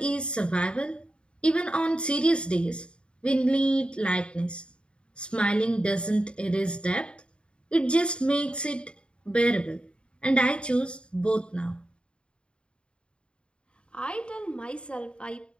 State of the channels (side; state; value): right; late; 0.054 ms